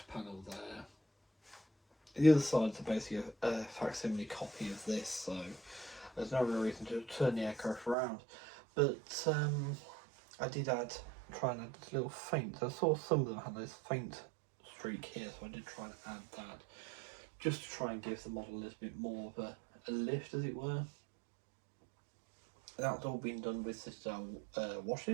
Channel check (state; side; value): drops out; left; at 8.0 s